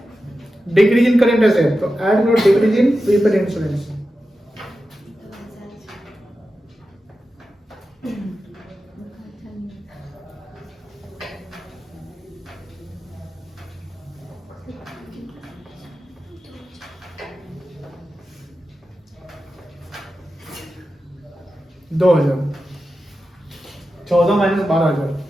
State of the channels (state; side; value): normal; both; correlation 0.92